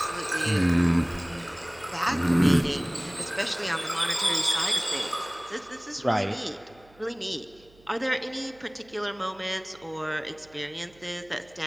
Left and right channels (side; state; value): right; noise; hum, 28 dB below the sound